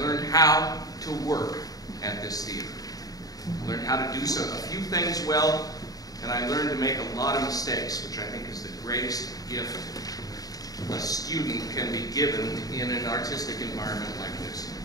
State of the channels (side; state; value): right; late; 0.18 ms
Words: how to work at this theater. I learned how to do a few things well, and I learned to make a lot of mistakes, which I think is the greatest gift a student can be given in an artistic environment like this.